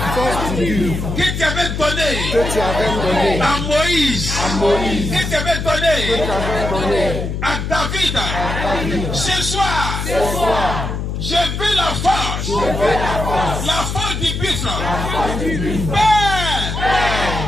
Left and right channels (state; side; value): noise; left; hum, 3 dB below the sound